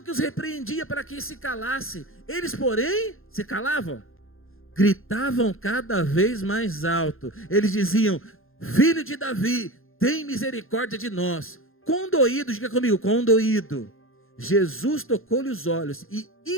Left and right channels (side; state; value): right; late; 0.60 ms